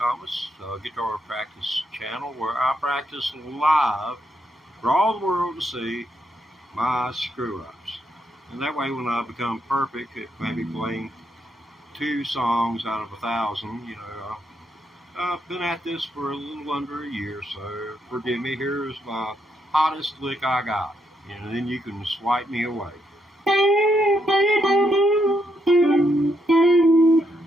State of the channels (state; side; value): normal; both; correlation 0.78